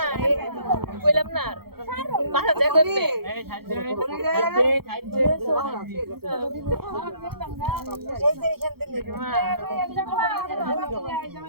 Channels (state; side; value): late; left; 0.95 ms